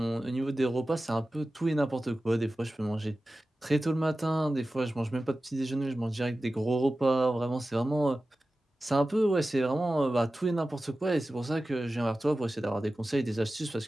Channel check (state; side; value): normal; both; correlation 0.95